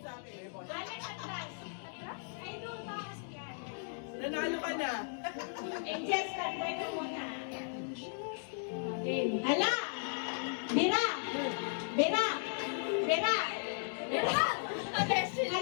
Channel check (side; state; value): right; silent; digital silence